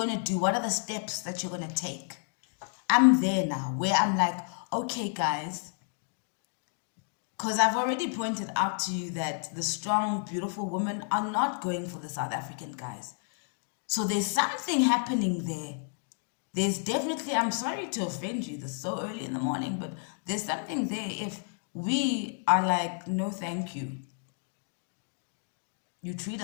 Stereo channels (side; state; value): right; silent; 57 dB below the other